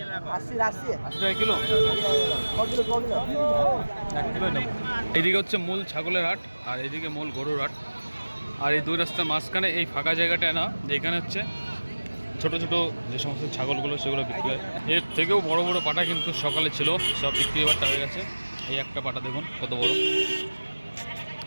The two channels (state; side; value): inverted; both; correlation -1.00